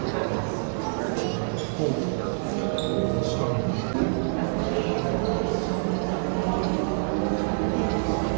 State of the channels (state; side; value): silent; left; 61 dB below the other